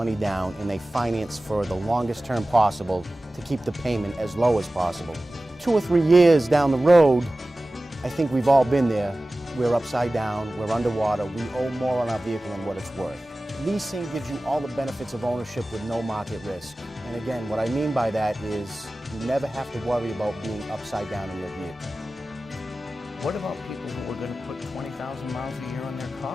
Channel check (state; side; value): normal; both; correlation 0.96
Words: down and they finance for the longest term possible to keep the payment as low as possible. 2 or 3 years down the road, I think we've all been there. We're upside down, we're underwater, we owe more on our vehicle than what it's worth. Leasing gives you all the benefits of ownership with no market risk. And again, what I mean by that is you never have to worry about being upside down in your vehicle. What about people who are going to put 20,000 miles a year on their